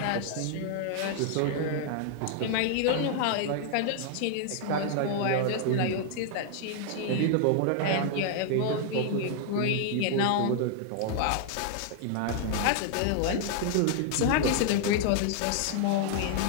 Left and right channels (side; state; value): both; different; correlation -0.01